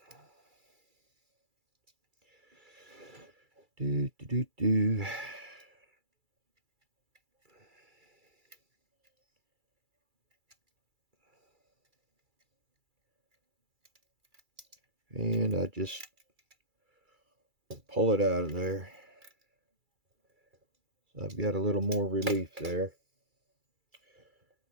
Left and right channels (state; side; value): late; left; 2.3 ms